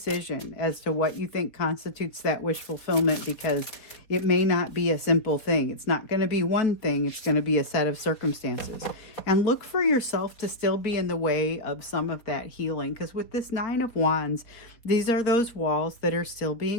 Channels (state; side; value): late; right; 4.0 ms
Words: as to what you think constitutes that wish fulfillment, because it may not be a simple thing. It's not going to be one thing. It's going to be a set of circumstances. And look for yourself to still be in the way of some of that healing, because with this Nine of Wands, these are those walls that are still